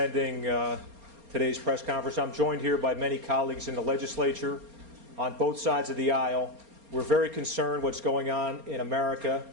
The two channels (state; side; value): late; left; 4.3 ms